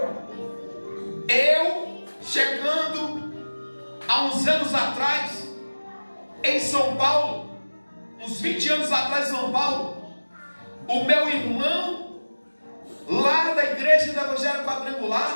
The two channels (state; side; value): inverted; both; correlation -1.00